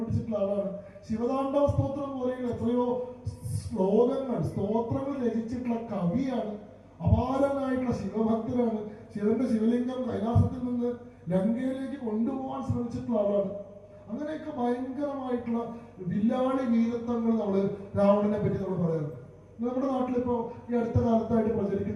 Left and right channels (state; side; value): identical; both; correlation 1.00